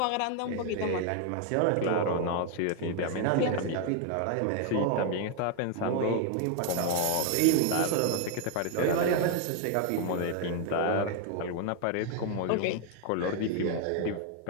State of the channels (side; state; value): both; different; correlation 0.00